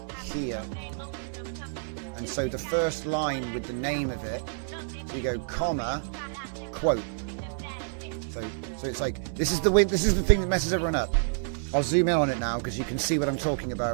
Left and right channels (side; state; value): left; silent; digital silence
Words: here. And so the first line with the name of it, so you go comma, quote. So it's like, this is the thing that messes everyone up. I'll zoom in on it now because you can see what I'm talking